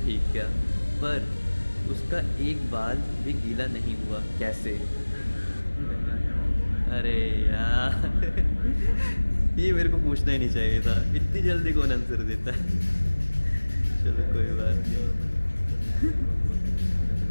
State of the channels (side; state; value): both; inverted; correlation -1.00